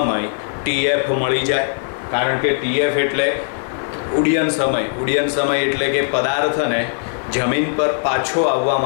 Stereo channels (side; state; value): right; silent; 66 dB below the other